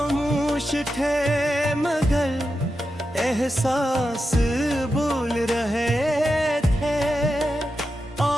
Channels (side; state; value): both; normal; correlation 0.89